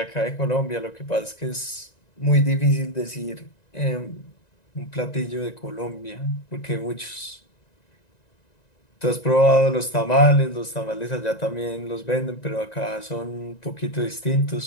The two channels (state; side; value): late; right; 1.9 ms